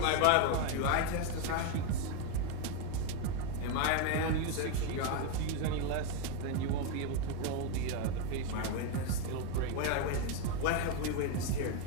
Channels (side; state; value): both; different; correlation 0.02